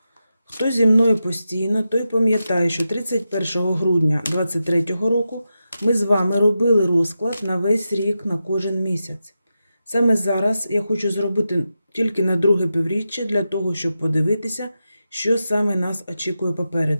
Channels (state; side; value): inverted; both; correlation -0.89